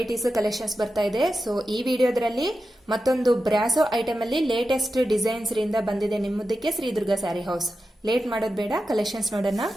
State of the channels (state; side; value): normal; both; correlation 0.91